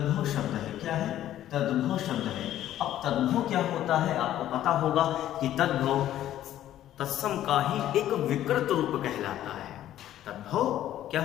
शब्द है। क्या है? तद्भव शब्द है। अब तद्भव क्या होता है? आपको पता होगा कि तद्भव तत्सम का ही एक विकृत रूप कहलाता है। तद्भव क्या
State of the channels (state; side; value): quieter; right; 12.4 dB